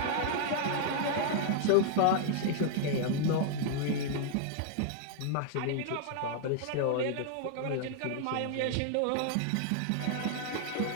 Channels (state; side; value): different; both; correlation -0.01